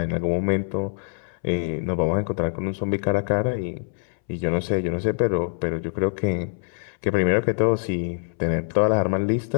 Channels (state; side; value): silent; right; 62 dB below the other